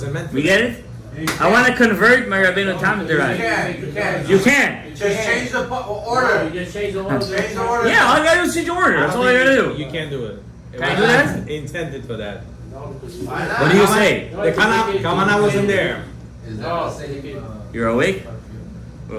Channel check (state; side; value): identical; both; correlation 1.00